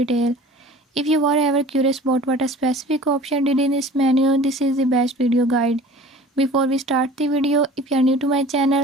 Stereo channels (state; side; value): normal; both; correlation 0.44